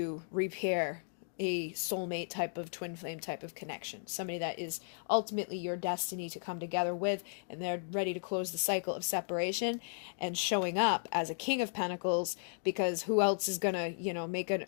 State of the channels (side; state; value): right; silent; digital silence